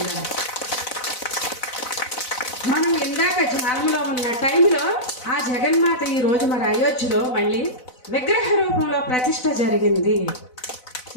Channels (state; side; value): late; right; 4.0 ms